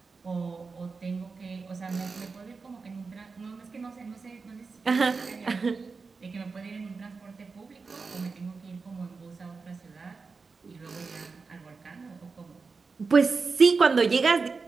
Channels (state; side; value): quieter; left; 4.5 dB